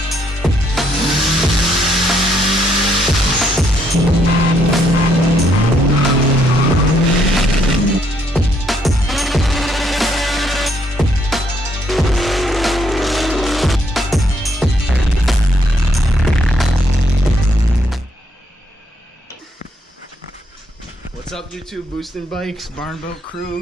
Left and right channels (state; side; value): normal; both; correlation 0.72